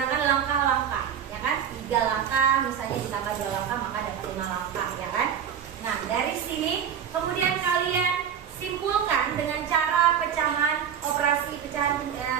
langkah-langkah, ya kan? 3 langkah, misalnya ditambah 2 langkah maka dapat 5 langkah, ya kan? Nah, dari sini kemudian kalian simpulkan dengan cara pecahan operasi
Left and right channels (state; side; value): quieter; left; 8.5 dB